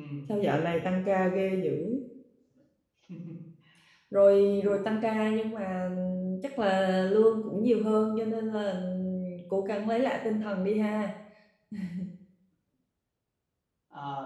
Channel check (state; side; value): identical; both; correlation 1.00